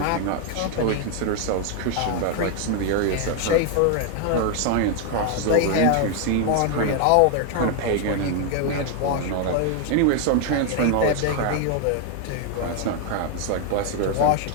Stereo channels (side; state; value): both; different; correlation 0.01